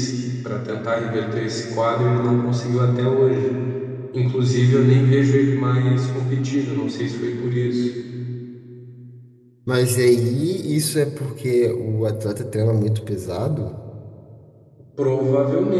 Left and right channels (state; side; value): identical; both; correlation 1.00